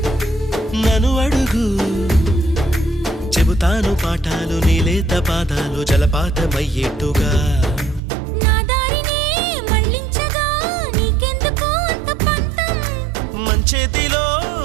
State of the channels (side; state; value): left; drops out; at 8.0 s